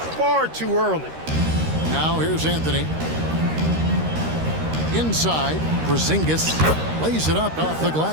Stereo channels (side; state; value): left; late; 13 ms